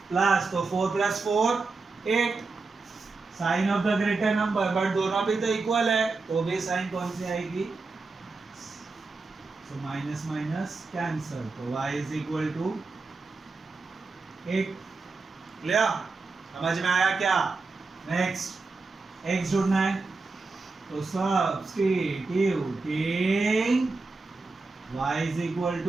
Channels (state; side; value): quieter; left; 3.9 dB